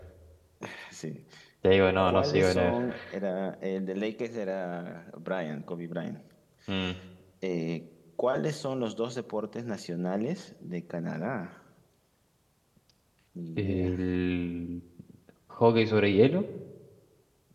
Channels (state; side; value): identical; both; correlation 1.00